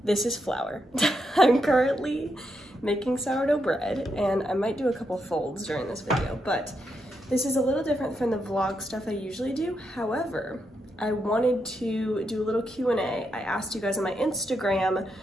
This is Flour. I'm currently making sourdough bread, and I might do a couple folds during this video, but this is a little different from the vlog stuff I usually do. However, I wanted to do a little Q&A. I asked you guys on my Instagram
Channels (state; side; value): normal; both; correlation 0.82